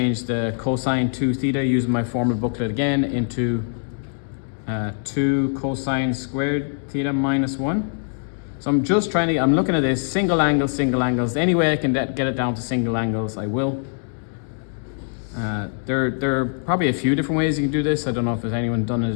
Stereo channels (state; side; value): silent; right; 64 dB below the other